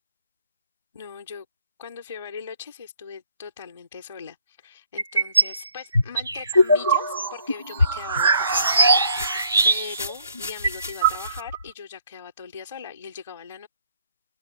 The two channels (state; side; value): inverted; both; correlation -0.64